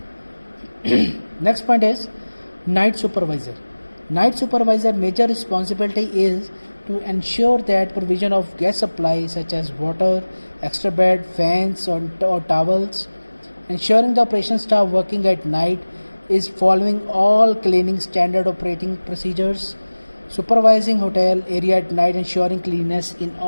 Next point is night supervisor. Night supervisor major responsibility is to ensure that provision of gas supply such as water, extra bed, fans or towels, ensuring the operation staff working at night is following all cleaning standard operating procedures, supervising hotel area at night, ensuring cleanliness in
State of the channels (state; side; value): inverted; both; correlation -1.00